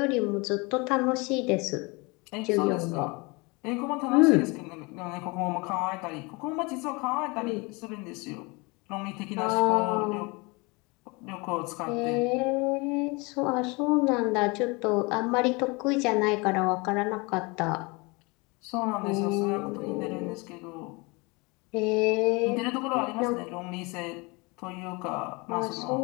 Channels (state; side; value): quieter; right; 27.2 dB